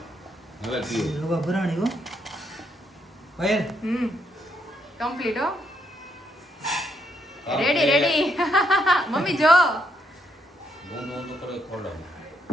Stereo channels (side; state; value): both; normal; correlation 0.75